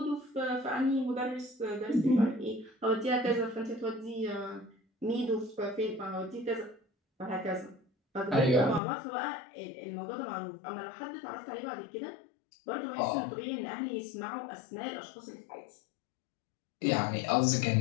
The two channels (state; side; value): drops out; right; at 8.8 s